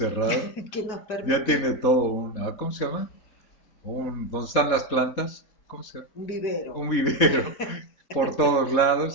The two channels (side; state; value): right; late; 4.1 ms